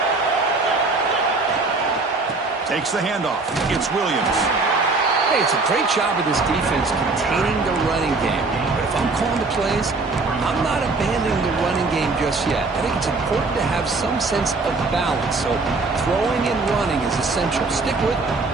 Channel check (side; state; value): left; quieter; 3.7 dB